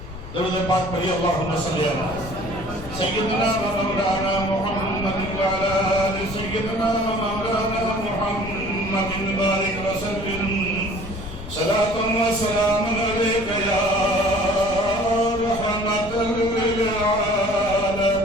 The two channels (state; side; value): noise; left; rumble, 12 dB below the sound